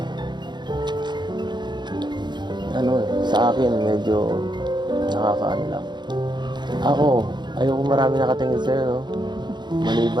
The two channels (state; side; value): late; left; 0.21 ms